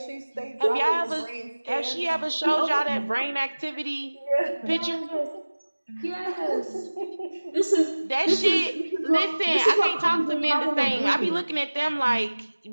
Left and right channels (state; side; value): inverted; both; correlation -1.00